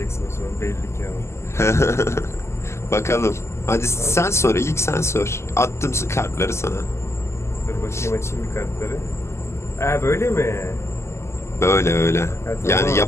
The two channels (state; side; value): late; right; 0.13 ms